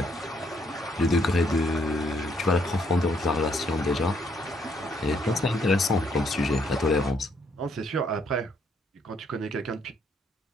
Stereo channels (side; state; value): both; normal; correlation 0.70